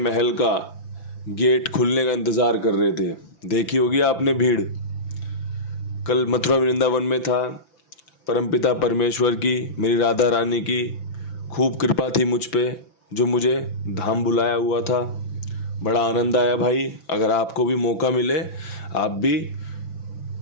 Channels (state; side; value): late; right; 5.9 ms